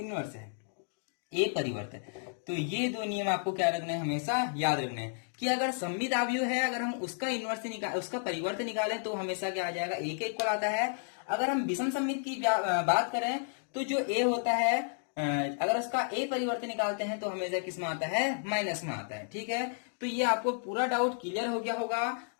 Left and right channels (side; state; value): right; silent; digital silence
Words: है, ए परिवर्तन। तो ये दो नियम आपको क्या रखना है, हमेशा याद रखना है कि अगर सममित अवयव है, अगर हम उसका इनवर्स उसका परिवर्तन निकालें तो हमेशा क्या आ जाएगा, ए के इक्वल आता है। अगर हम विषम सममित की बात करें तो जो ए होता है, अगर उसका ए परिवर्तन निकालते हैं तो हमेशा किस में आता है, माइनस में आता है। ठीक है, तो ये आपको पूरा डाउट क्लियर हो गया होगा।